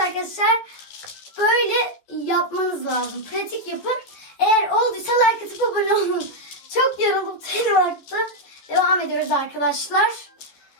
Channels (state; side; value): late; right; 14 ms